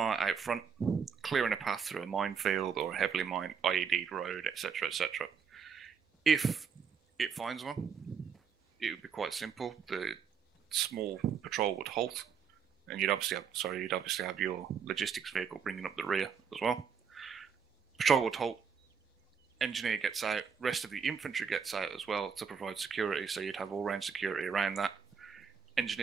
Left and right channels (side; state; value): left; quieter; 6.7 dB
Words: out front, clearing a path through a minefield or a heavily mined IED road, etc., etc. If it finds one, it would be quite simple. The small patrol would halt, and you'd obviously have your logistics vehicle bringing up the rear as well. Patrol would halt. Engineer gets out. Rest of the infantry gets out as well to provide security. So you'd have all-round security around that.